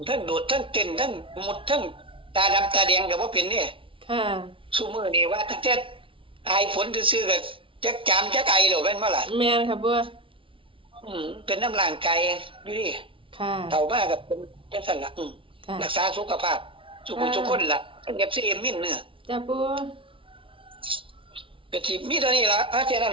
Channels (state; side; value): late; left; 0.25 ms